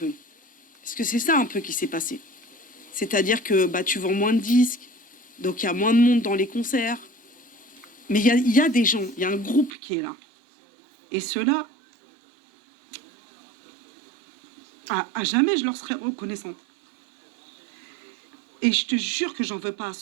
Parce que c'est ça un peu qui s'est passé. C'est-à-dire que bah, tu vends moins de disques, donc il y a moins de monde dans les concerts. Mais il y a des gens, il y a un groupe qui est là. Et ceux-là, à jamais je leur serai reconnaissante. Et je te jure que j'en veux pas à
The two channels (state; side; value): drops out; left; at 9.7 s